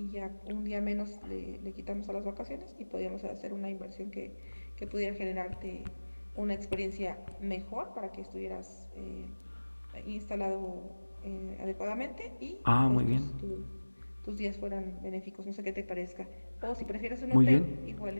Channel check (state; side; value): inverted; both; correlation -1.00